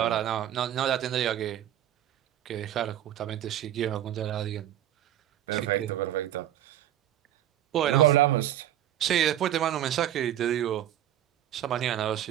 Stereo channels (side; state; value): left; quieter; 11.9 dB